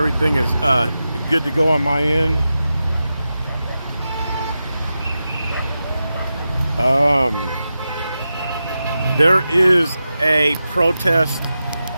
everything is good to go on my end. There is a protest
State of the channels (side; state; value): both; inverted; correlation -0.91